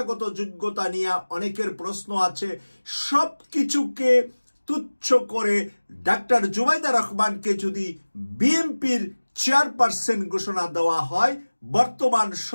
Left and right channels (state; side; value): inverted; both; correlation -1.00